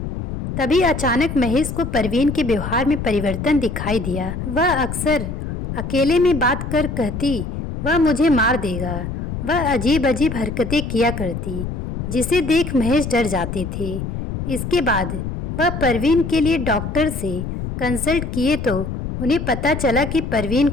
तभी अचानक महेश को परवीन के व्यवहार में परिवर्तन दिखाई दिया। वह अक्सर अकेले में बात कर कहती, वह मुझे मार देगा। वह अजीब अजीब हरकतें किया करती, जिसे देख महेश डर जाते थे। इसके बाद वह परवीन के लिए डॉक्टर से कंसल्ट किए तो उन्हें पता चला कि परवीन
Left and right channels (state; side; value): noise; left; rumble, 5 dB below the sound